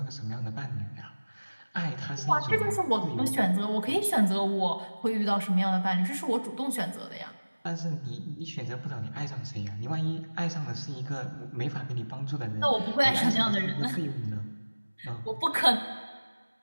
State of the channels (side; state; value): both; inverted; correlation -1.00